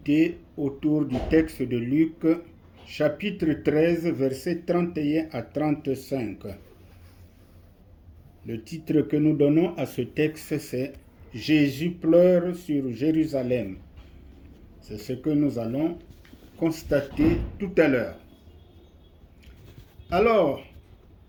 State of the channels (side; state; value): both; identical; correlation 1.00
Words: autour du texte de Luc, chapitre 13, versets 31 à 35. Le titre que nous donnons à ce texte, c'est « Jésus pleure sur Jérusalem ». C'est ce que nous allons constater tout à l'heure. Alors,